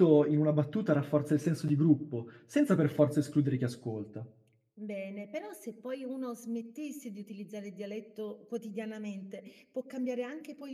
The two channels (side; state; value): both; identical; correlation 1.00